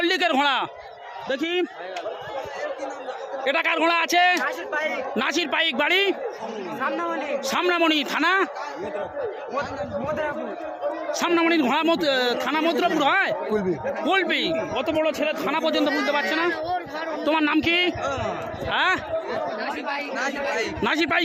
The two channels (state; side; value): identical; both; correlation 1.00